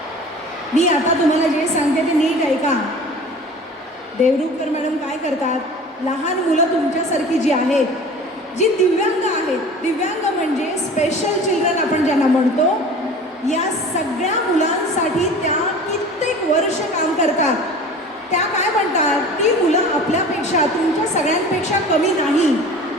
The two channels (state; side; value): normal; both; correlation 0.41